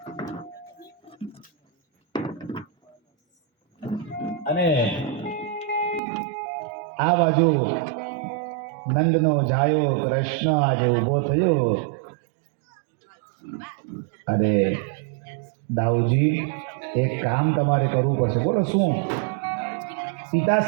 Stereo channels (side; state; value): left; drops out; at 6.0 s